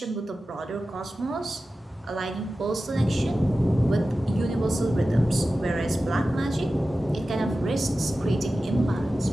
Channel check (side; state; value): both; normal; correlation 0.94